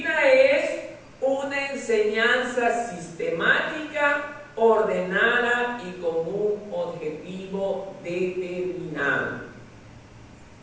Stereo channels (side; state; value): both; identical; correlation 1.00